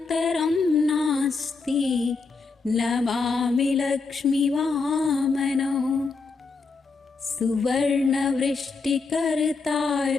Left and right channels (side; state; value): right; quieter; 4.3 dB